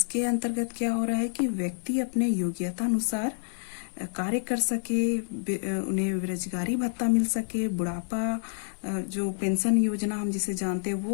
अंतर्गत क्या हो रहा है कि व्यक्ति अपने योग्यता अनुसार कार्य कर सके, उन्हें बेरोजगारी भत्ता मिल सके, बुढ़ापा जो पेंशन योजना हम जिसे जानते हैं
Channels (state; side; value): silent; right; 59 dB below the other